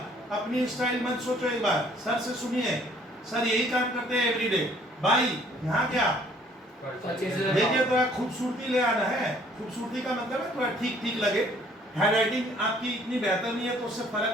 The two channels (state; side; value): normal; both; correlation 0.59